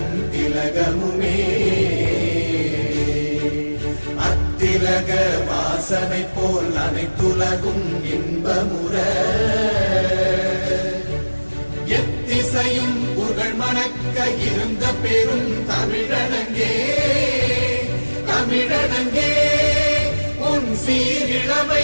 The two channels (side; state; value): both; inverted; correlation -1.00